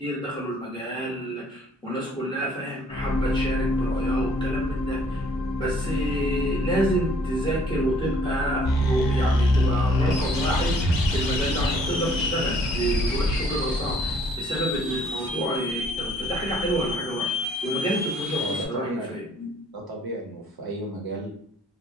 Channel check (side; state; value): both; normal; correlation 0.60